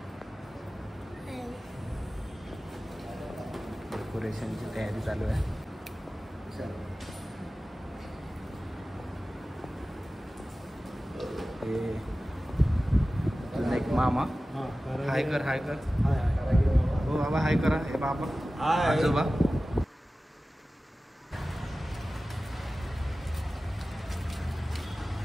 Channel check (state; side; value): normal; both; correlation 0.96